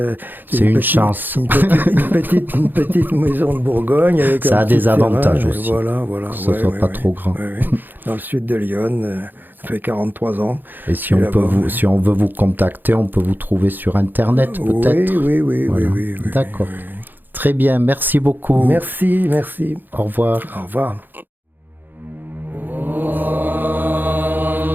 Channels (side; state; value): left; late; 0.090 ms